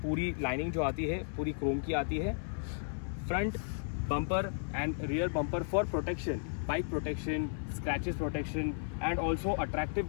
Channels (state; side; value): silent; right; 55 dB below the other